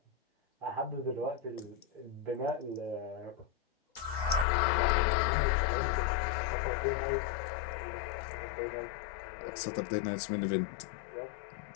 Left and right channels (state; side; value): drops out; right; at 4.5 s